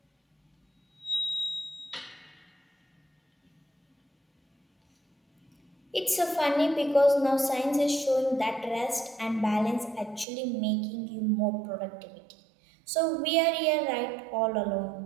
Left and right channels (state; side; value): drops out; left; at 10.2 s